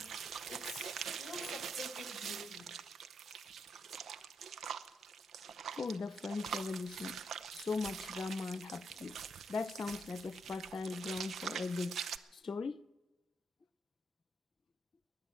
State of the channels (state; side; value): normal; both; correlation 0.78